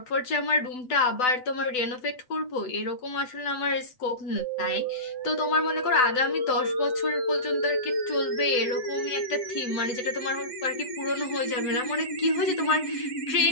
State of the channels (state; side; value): late; right; 8.0 ms